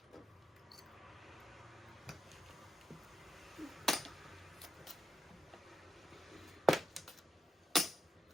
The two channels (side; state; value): both; normal; correlation 0.87